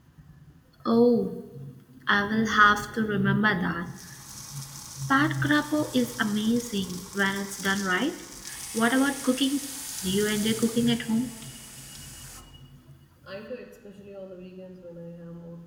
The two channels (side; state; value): both; identical; correlation 1.00